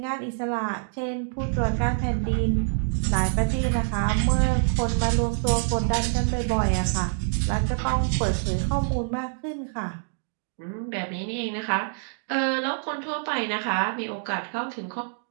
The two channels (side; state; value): left; silent; digital silence